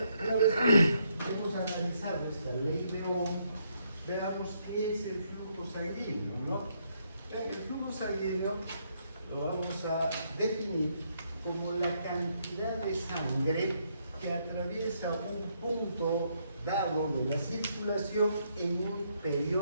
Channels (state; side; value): inverted; both; correlation -0.74